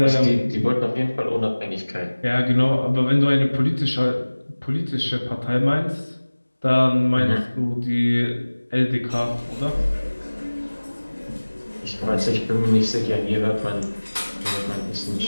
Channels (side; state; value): both; inverted; correlation -1.00